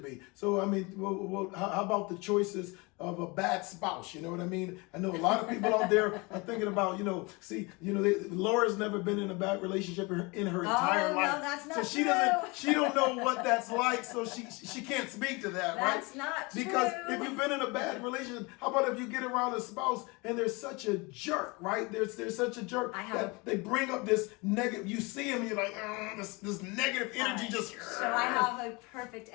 So I mean, how about the choices of a bad spouse? You know what I mean? I know a lot of people out there are thinking about, Laura's never been in a bad relationship in her entire life. No, that's not so she true. she don't know what that's like. So she can't speak to that, right? That's not true. Because if you've been in a bad relationship, how about if you get around a spouse and there's such a jerk, right? There's such a jerk that they bring up this negative. You see him, you're like, this negative energy just. So I have a perfect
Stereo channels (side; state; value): right; quieter; 26.9 dB